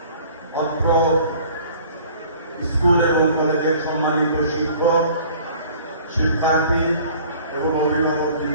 অত্র স্কুল এবং কলেজের সম্মানিত শিক্ষক, শিক্ষার্থী এবং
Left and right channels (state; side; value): inverted; both; correlation -0.50